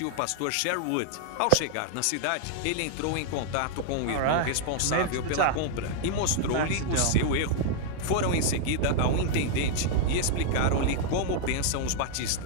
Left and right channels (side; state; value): both; different; correlation 0.00